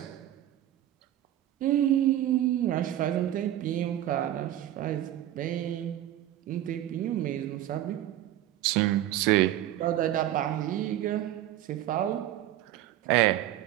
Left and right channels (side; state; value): left; quieter; 13.0 dB